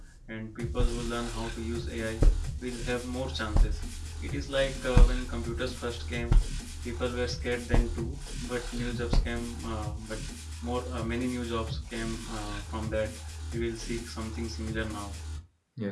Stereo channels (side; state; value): both; identical; correlation 1.00